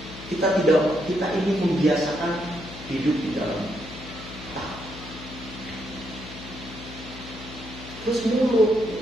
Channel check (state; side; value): noise; left; hum, 14 dB below the sound